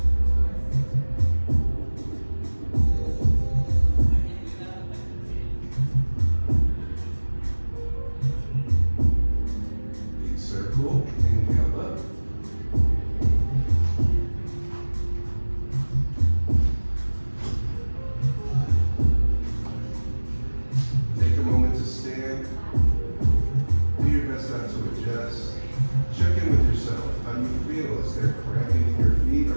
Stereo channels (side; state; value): both; inverted; correlation -1.00